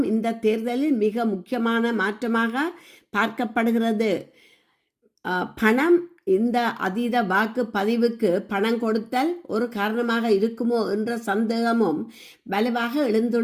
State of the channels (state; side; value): identical; both; correlation 1.00